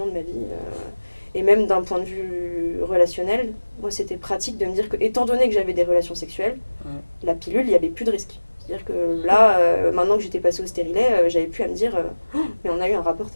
de ma vie. Et même d'un point de vue relationnel, moi, c'était pratique de me dire que, étant donné que j'avais des relations sexuelles, la pilule, il n'y avait plus de risque. C'est-à-dire que là, maintenant que j'étais passée au stérilet, j'avais plus à me dire mais on a eu un rapport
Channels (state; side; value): inverted; both; correlation -1.00